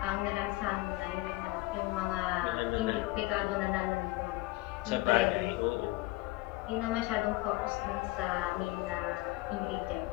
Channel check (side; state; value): right; quieter; 20.4 dB